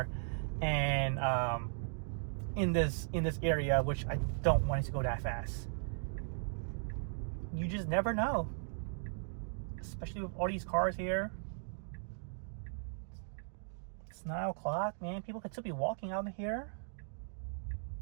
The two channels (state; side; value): silent; left; digital silence